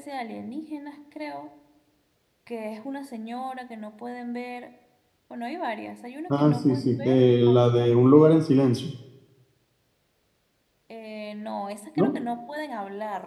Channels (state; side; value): identical; both; correlation 1.00